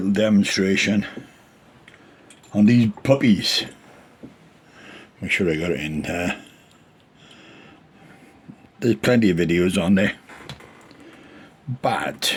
demonstration on these puppies. Make sure I got it in there. There's plenty of videos on there, but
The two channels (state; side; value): identical; both; correlation 1.00